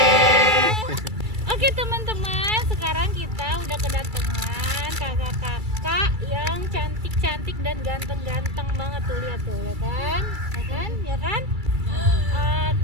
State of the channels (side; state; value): left; late; 2.3 ms